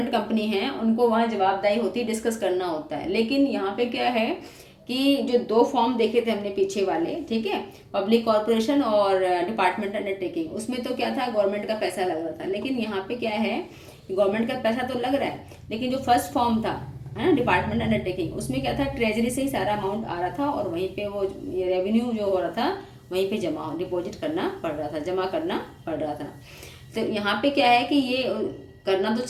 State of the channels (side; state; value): both; identical; correlation 1.00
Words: कंपनी है उनको वहाँ जवाबदाही होती है, डिस्कस करना होता है। लेकिन यहाँ पे क्या है कि जो 2 फॉर्म देखे थे हमने पीछे वाले, ठीक है, पब्लिक कॉर्पोरेशन और डिपार्टमेंट अंडरटेकिंग, उसमें तो क्या था, गवर्नमेंट का पैसा लग रहा था। लेकिन यहाँ पे क्या है कि गवर्नमेंट का पैसा तो लग रहा है, लेकिन जो फर्स्ट फॉर्म था, है ना, डिपार्टमेंट अंडरटेकिंग, उसमें क्या था, ट्रेजरी से ही सारा अमाउंट आ रहा था और वहीं पे वो रेवेन्यू जो हो रहा था वहीं पे डिपॉजिट करना पड़ रहा था, जमा करना पड़ रहा था। तो यहाँ पे क्या है कि ये करना तो